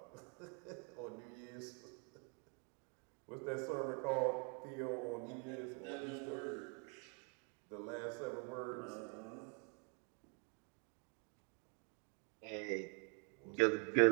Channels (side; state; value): left; quieter; 37.6 dB